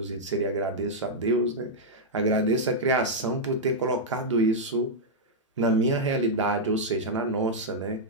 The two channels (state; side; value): normal; both; correlation -0.05